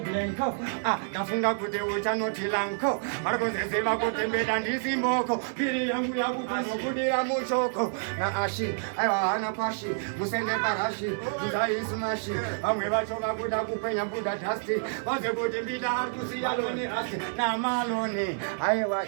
ndafunga kuti uchanoti lanko varikuziziva kuti mbeda ndisimboko piri yangu yakupazokudira muchoko naashi aiwa hana pashi musende parashi nzaisumashi vamwe vacho vakuda kupenya buda dhasti vaze kuti mbida ari kusiya loni rasi namaloni aiwa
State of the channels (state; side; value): silent; left; 59 dB below the other